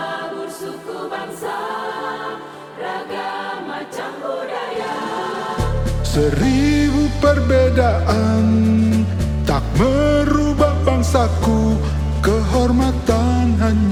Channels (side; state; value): both; identical; correlation 1.00